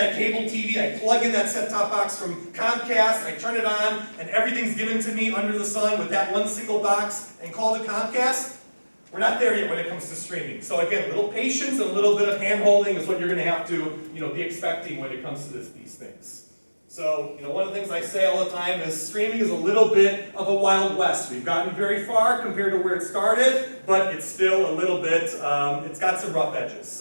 cable TV, I plug in that set-top box from Chromecast, I turn it on, and everything's given to me under the sun with that one single box and call it Comcast. We're not there yet when it comes to streaming. So again, a little patience and a little bit of hand-holding is what you're going to have to, be expecting when it comes to these things. So, one of the things I say all the time is streaming is a little bit of a Wild West. We've gotten very far compared to where it started, but it's still a little bit, it's got some rough edges.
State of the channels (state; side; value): inverted; both; correlation -1.00